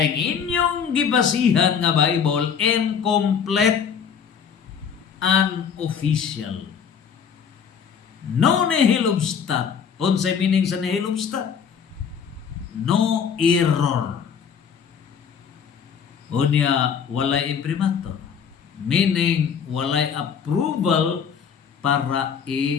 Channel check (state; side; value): quieter; right; 7.1 dB